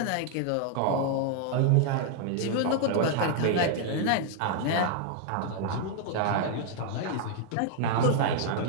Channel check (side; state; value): both; different; correlation 0.00